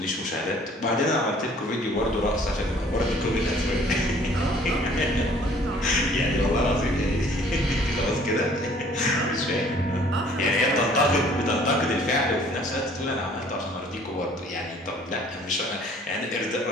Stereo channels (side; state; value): both; normal; correlation 0.55